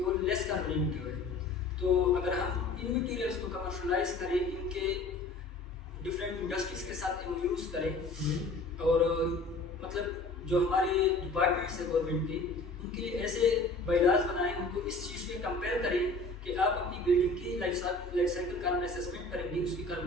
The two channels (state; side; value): quieter; right; 3.1 dB